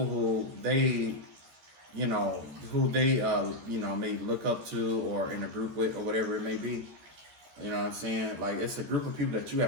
who they may look up to, or in a group with, or whatever it may be. You know what I'm saying? Like, it's a group of people that you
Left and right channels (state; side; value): late; left; 14 ms